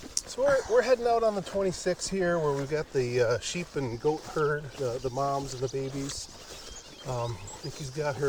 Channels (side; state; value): both; identical; correlation 1.00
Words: So we're heading out on the 26th here, where we've got the sheep and goat herd, the moms and the babies. Nikki's got